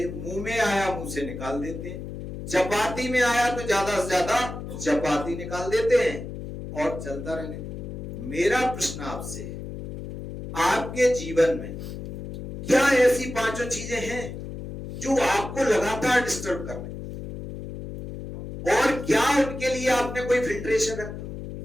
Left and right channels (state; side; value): noise; left; hum, 8 dB below the sound